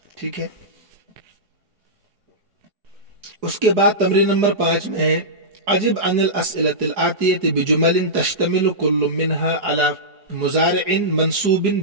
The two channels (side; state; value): left; late; 4.7 ms